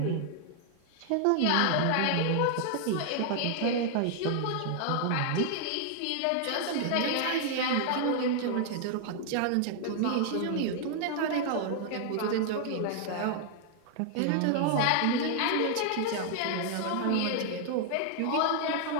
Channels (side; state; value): both; different; correlation 0.00